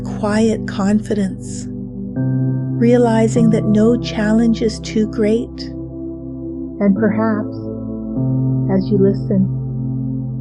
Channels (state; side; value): identical; both; correlation 1.00